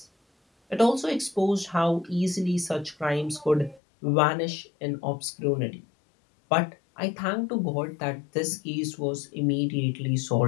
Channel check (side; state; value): right; drops out; at 3.8 s